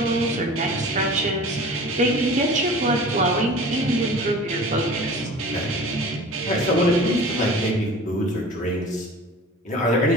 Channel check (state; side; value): normal; both; correlation 0.40